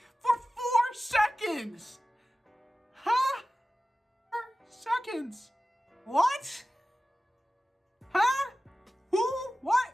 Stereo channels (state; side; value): normal; both; correlation 0.96